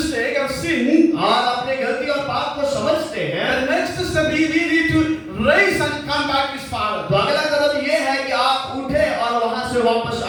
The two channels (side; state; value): both; identical; correlation 1.00